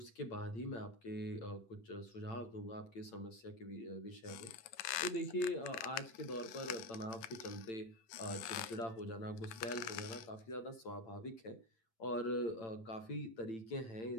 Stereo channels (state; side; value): late; right; 9.6 ms